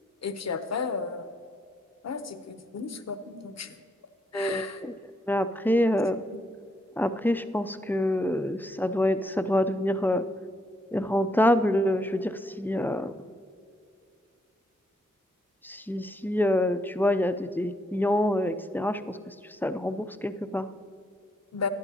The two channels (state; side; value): normal; both; correlation 0.75